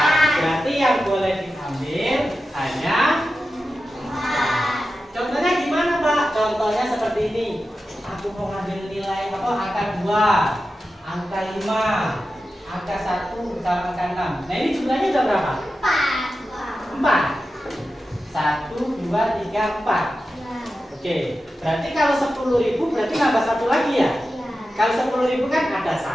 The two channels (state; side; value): normal; both; correlation 0.92